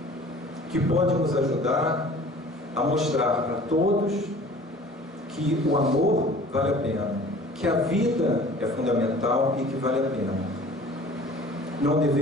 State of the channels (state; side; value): normal; both; correlation 0.47